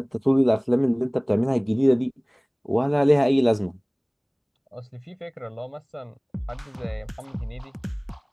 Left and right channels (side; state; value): both; identical; correlation 1.00